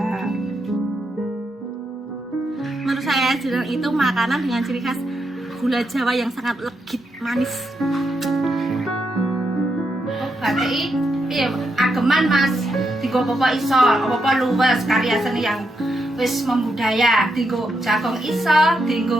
Menurut saya jenang itu makanan dengan ciri khas gula Jawa yang sangat legit, manis. Oh, batik iya ageman Mas. Digo apa iso, apa luwes karya seni yang wis membudaya. Digo jagong iso,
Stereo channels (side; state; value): both; normal; correlation 0.82